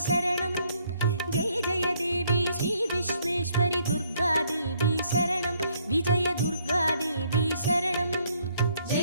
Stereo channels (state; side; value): inverted; both; correlation -0.67